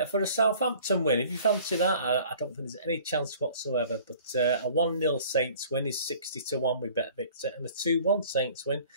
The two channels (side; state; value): both; inverted; correlation -0.50